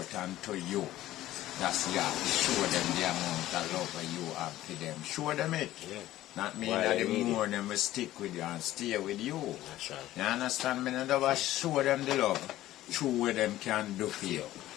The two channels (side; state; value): right; quieter; 14.8 dB